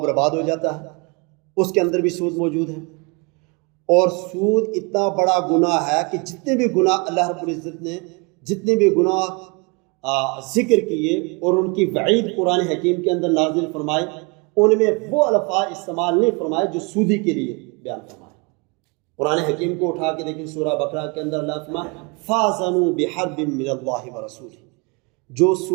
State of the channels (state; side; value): quieter; left; 30.5 dB